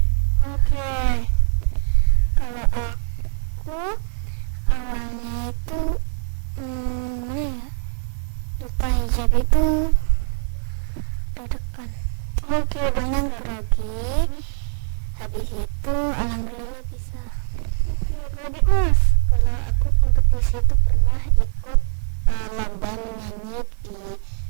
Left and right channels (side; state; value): left; silent; digital silence